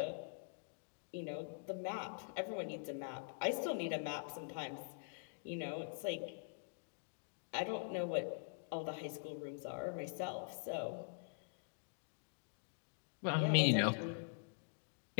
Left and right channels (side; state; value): right; silent; digital silence